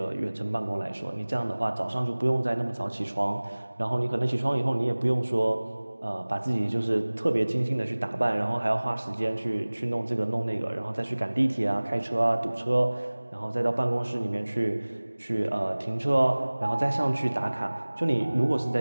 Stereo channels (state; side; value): inverted; both; correlation -1.00